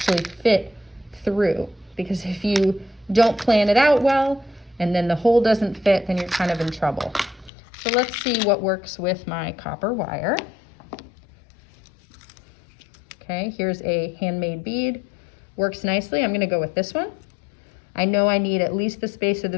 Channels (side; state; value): right; drops out; at 7.5 s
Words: fit through, because if you don't plan it out well and then the hole doesn't fit, then you're kind of in trouble. So let's see what works with my copper wire. Okay, here's a handmade bead. Works nicely. I'm gonna go with this one. I know I need at least the space of